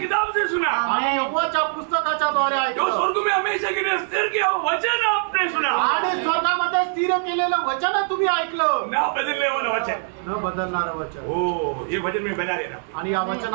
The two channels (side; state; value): left; silent; 60 dB below the other